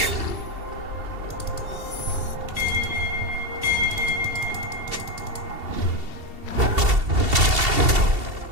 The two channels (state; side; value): late; left; 2.7 ms